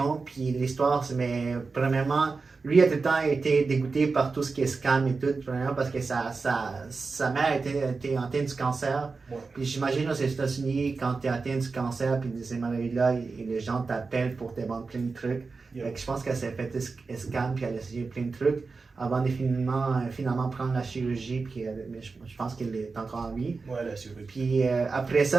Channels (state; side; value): quieter; left; 4.3 dB